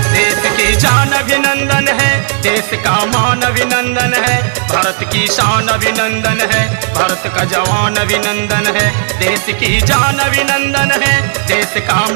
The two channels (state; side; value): silent; left; 71 dB below the other